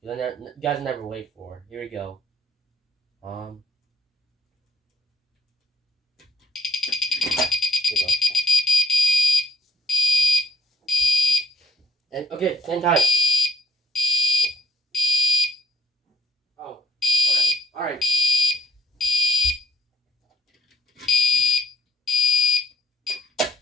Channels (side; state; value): both; normal; correlation 0.74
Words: You guys never wait for it. Here we go. Here we go. And okay, same time. Oh, okay. Alright.